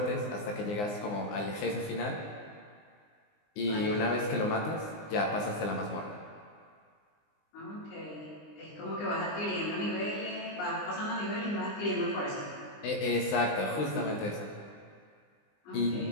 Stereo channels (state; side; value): late; right; 19 ms